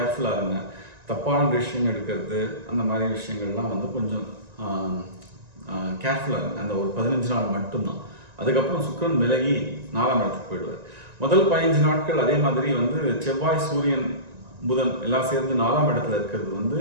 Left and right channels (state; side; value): late; left; 1.9 ms